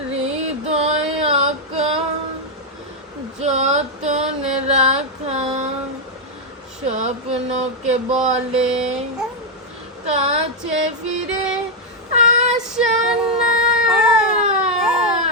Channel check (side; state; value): both; normal; correlation 0.00